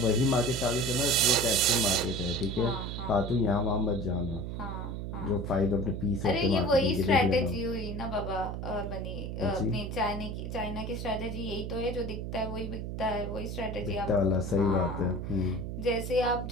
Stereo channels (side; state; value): right; noise; hum, 5 dB below the sound